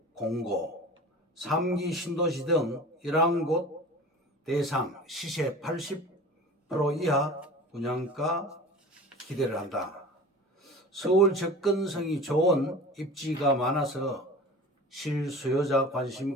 공고, 3기 신도시 등 11곳 대상 시세 80% 이하 분양가 기대를 한다. 서울 접근성이 좋은 입지가 많아서 실수요자 관심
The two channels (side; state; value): both; normal; correlation 0.37